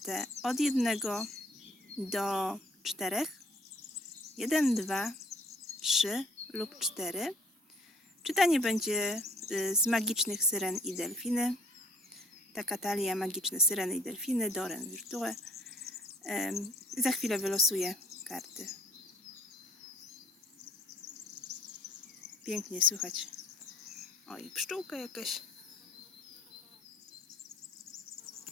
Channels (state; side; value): normal; both; correlation 0.57